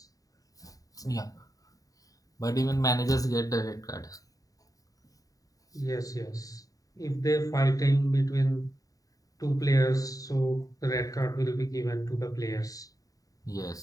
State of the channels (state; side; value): late; right; 0.17 ms